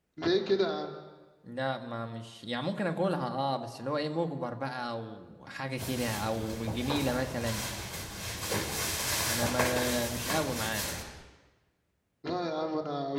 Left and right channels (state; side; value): identical; both; correlation 1.00